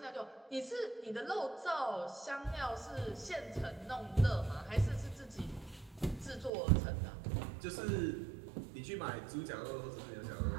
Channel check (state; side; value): drops out; left; at 6.5 s